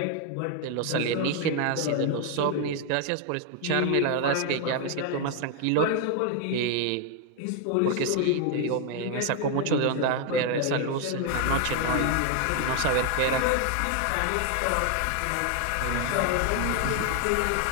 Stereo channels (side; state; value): both; different; correlation 0.01